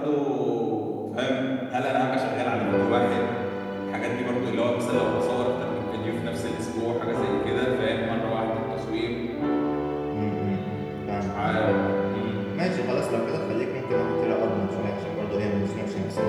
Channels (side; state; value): both; identical; correlation 1.00